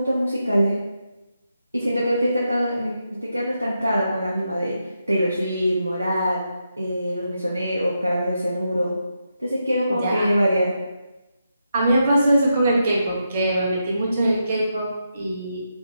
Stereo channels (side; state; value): both; inverted; correlation -0.84